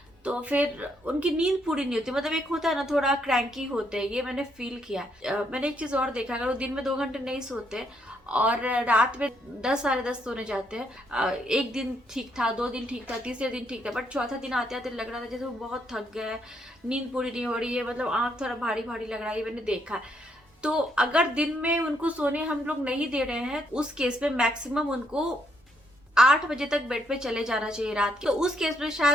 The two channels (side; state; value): both; normal; correlation 0.74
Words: तो फिर उनकी नींद पूरी नहीं होती। मतलब एक होता है ना, थोड़ा क्रैंकी होते हैं, ये मैंने फील किया। मैंने एक चीज और देखा, अगर वो दिन में 2 घंटे नहीं सोते और रात में 10-10:30 सोने जाते हैं, 1 दिन ठीक था, 2 दिन ठीक था, तीसरे दिन ठीक था, बट चौथा दिन आते आते लग रहा था जैसे वो बहुत थक गए, नींद पूरी नहीं हो रही है, मतलब आंख थोड़ा भारी भारी लग रहा है, ये मैंने देखा है। तो अगर दिन में उनको सोने हम लोग नहीं दे रहे हैं, उस केस में मैक्सिमम उनको 8 बजे तक बेड पे चले जाना चाहिए रात के। तो उस केस में